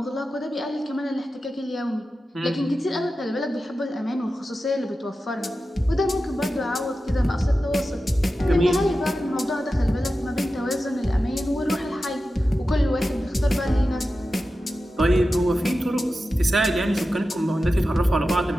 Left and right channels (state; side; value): normal; both; correlation 0.93